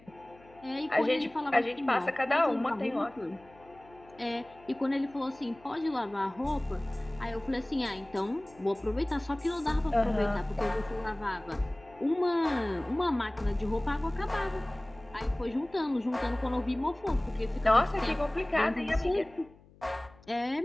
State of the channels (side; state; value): left; noise; hum, 26 dB below the sound